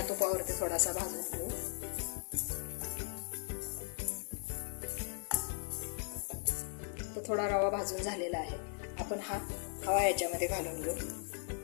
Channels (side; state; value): right; silent; digital silence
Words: तुपावरती थोडासा भाजून घेऊ. तो थोडा रवा भाजून झालेला आहे. आपण हा खवा याच्यामध्ये घालून घेऊ.